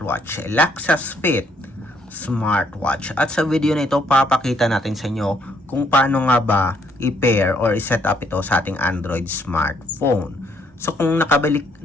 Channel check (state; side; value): normal; both; correlation 0.69